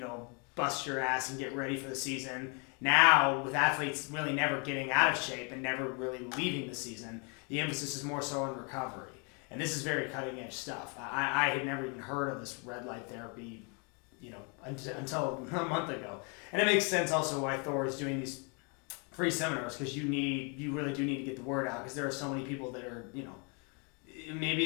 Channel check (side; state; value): right; quieter; 35.5 dB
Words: bust your ass and get ready for the season. Now, with athletes really never getting out of shape and never really leaving the season, the emphasis is more so on recovery. And this is very cutting edge stuff. I had never even heard of this red light therapy, until a month ago. And it makes sense also why Thor is doing these free seminars, because you really do need to get the word out, because there are so many people that are,